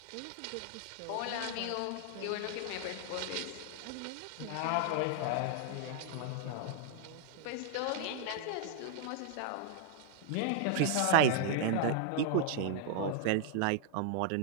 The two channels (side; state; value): both; different; correlation -0.01